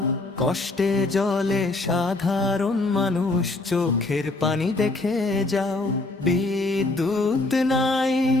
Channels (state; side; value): quieter; right; 3.0 dB